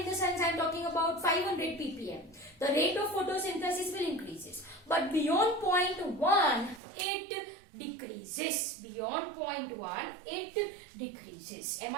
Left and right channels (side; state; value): left; drops out; at 6.8 s